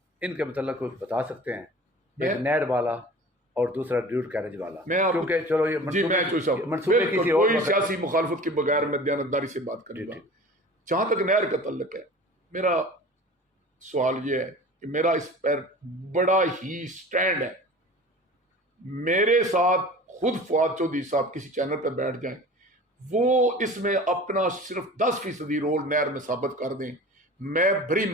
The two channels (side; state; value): both; normal; correlation 0.40